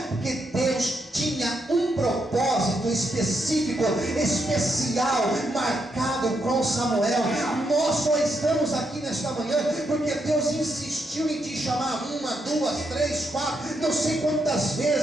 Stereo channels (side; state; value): both; normal; correlation 0.80